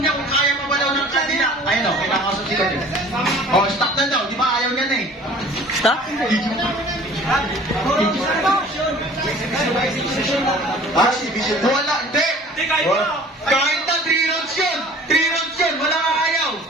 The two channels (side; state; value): both; normal; correlation 0.48